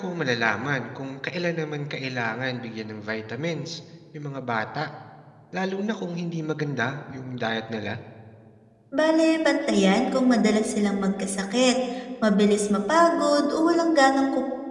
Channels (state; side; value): identical; both; correlation 1.00